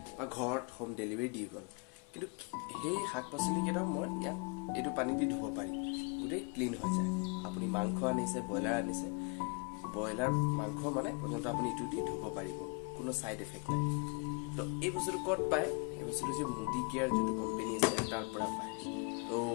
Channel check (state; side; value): quieter; right; 33.5 dB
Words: বা ঘৰত হোম ডেলিভাৰী দি গ'ল কিন্তু সেই শাক পাচলি কেইটা মই ইয়াত এইটো পানী দি ধুব পাৰি গোটেই ক্লিন হৈ যায় আপুনি মাংস আনিছে ব্ৰইলাৰ মাংস মানে প্ৰথমতে আপুনি এইটো দি ধুব পাৰিব কোনো ছাইড এফেক্ট নাই তো এই বস্তুটো ক'ত পায় এই বস্তুটো যে মুদি কেয়াৰ যোনটো কোম্পানী আছে তাৰ পৰা পায় তো